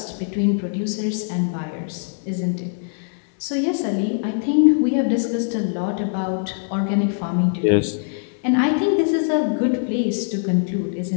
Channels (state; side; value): silent; right; 63 dB below the other